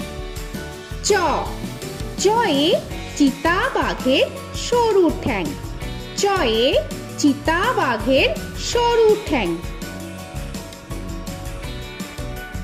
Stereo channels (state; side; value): identical; both; correlation 1.00